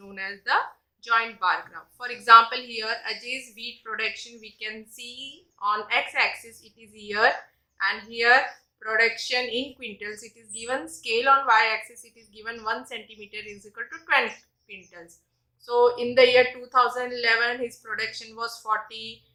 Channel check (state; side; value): identical; both; correlation 1.00